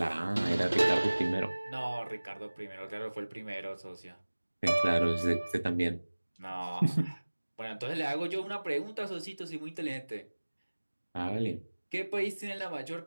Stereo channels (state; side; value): inverted; both; correlation -1.00